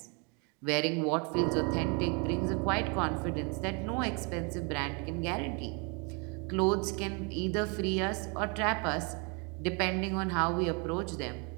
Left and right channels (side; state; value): left; quieter; 33.6 dB